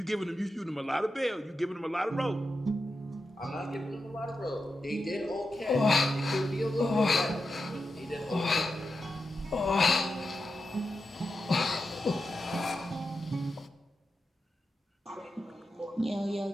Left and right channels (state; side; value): normal; both; correlation 0.89